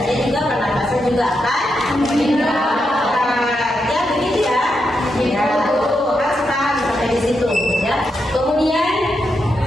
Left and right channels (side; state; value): both; normal; correlation 0.84